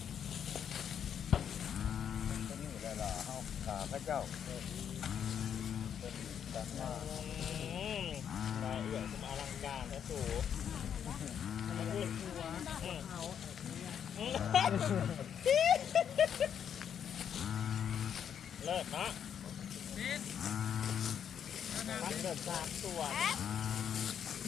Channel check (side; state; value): right; quieter; 8.5 dB